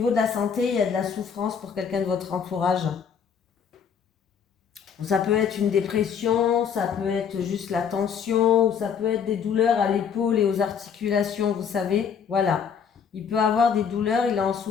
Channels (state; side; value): quieter; right; 7.1 dB